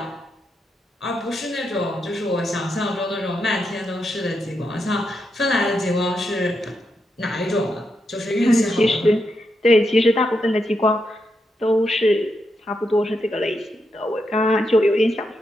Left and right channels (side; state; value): both; normal; correlation 0.84